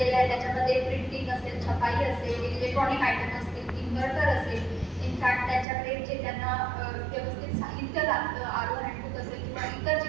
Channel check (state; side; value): drops out; left; at 5.7 s